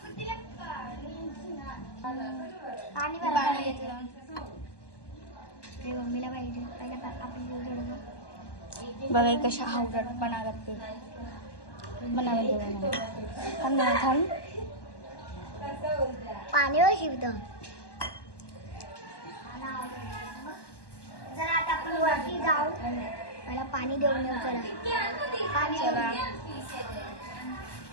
पाणी पाणी घेतलं. ते मम्मीला पाहिजे पहिला आपण थोडं बघा कशा हावडटपणा करते. बनावं थांब. पाणीवर शिवतो. जरा आता आपण वरती जाऊ पहिला पाणी देऊन येऊ. चला पाणी चला.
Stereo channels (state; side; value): late; right; 1.1 ms